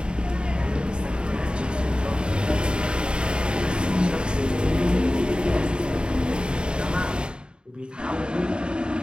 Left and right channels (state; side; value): late; left; 0.051 ms